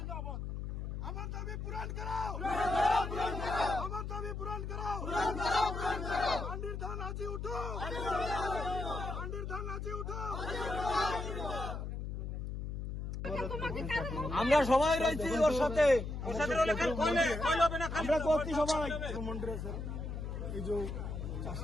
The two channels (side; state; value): left; noise; hum, 5 dB below the sound